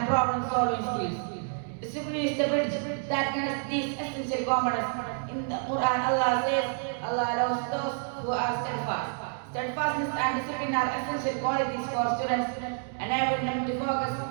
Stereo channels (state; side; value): silent; left; 56 dB below the other